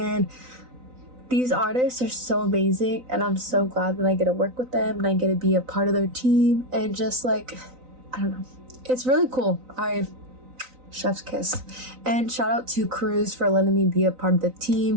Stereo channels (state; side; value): late; left; 3.9 ms